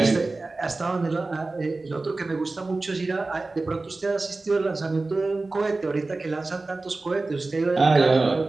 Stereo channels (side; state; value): left; quieter; 3.4 dB